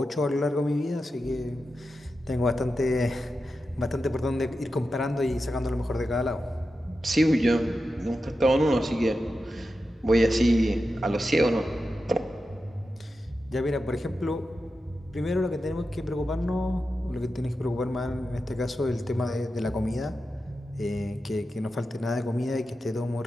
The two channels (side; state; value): both; normal; correlation 0.90